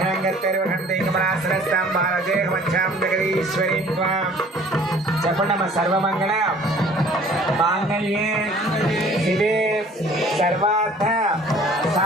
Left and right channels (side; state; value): both; normal; correlation 0.52